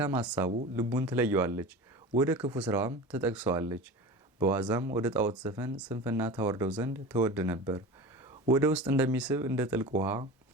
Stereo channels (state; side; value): normal; both; correlation 0.32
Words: ሐሳቡ ልቡን ትለየዋለች፣ ወደ ክፉ ስራዋም ትጠቅሰዋለች። በዋዛም ወደ ጣዖት ዘፈን ስንፍና ታወርደው ዘንድ ተወድ ነበር። ወደ ውስጥ እንደሚስብ እንደ ጥልቅ ውሃ